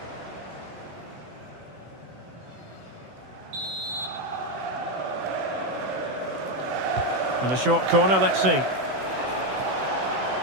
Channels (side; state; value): left; late; 16 ms